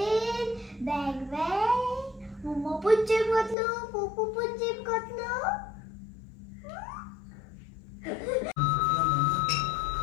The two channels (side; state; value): right; drops out; at 3.6 s